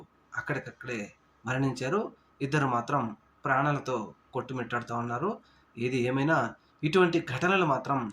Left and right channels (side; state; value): both; identical; correlation 1.00